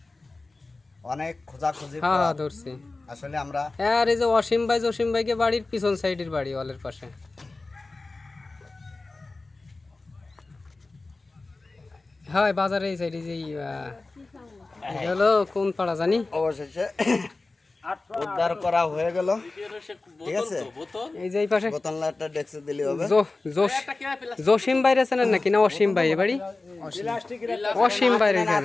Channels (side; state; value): right; quieter; 3.4 dB